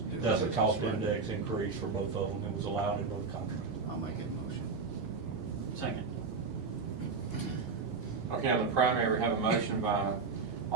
doing That's a business, cost right? index increase for both of them. It was allowed in both contracts. I'll make a motion. Second. Okay, on the primary, we have a motion by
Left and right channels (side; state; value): left; quieter; 4.7 dB